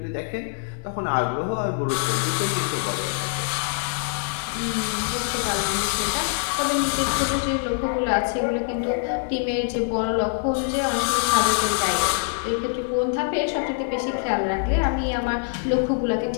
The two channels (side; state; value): right; silent; 55 dB below the other